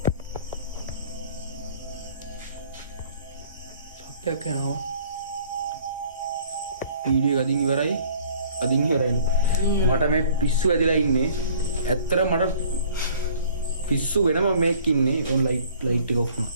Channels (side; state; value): both; inverted; correlation -0.54